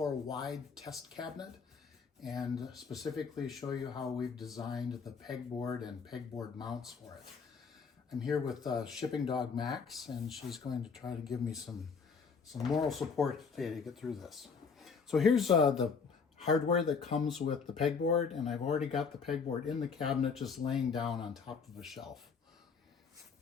Wide test cabinet and specifically show you how we've designed the pegboard and pegboard mounts for it. I'm here with Shipping Dog Max, and she's going to try to give me some moral support today to get through this. So here's the hardware that comes with the pegboard, and I've already got the pegboard in the cabinet just laying down on top of a shelf.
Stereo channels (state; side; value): quieter; right; 5.5 dB